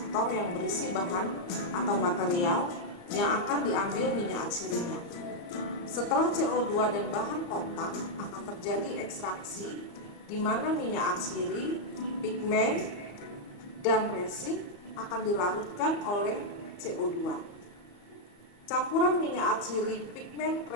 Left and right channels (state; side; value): late; right; 34 ms